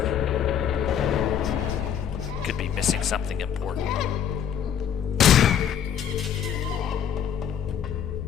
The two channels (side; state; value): right; quieter; 8.8 dB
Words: Could be missing something important.